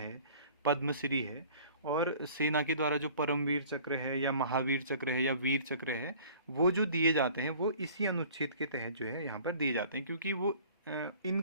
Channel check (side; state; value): both; inverted; correlation -0.49